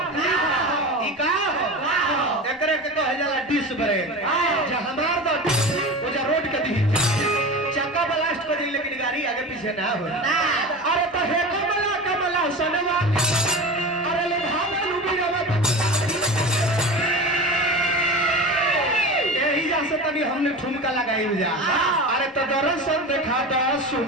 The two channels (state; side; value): normal; both; correlation 0.29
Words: एकरे के कहे जाला डिश ब्रेक जे हमार दो ओ जे रोड के दी चक्का ब्लास्ट कर दी लेकिन गाड़ी आगे पीछे ना हो अरे तो हे कमला कमला सनवा अरे ले भावल उबिरवा यही जा से तनी हमने ठुमका लगाई जा अरे तो दर्शन देखा द